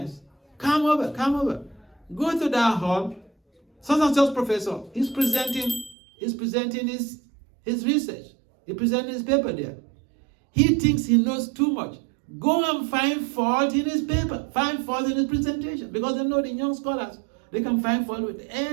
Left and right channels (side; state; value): left; drops out; at 6.0 s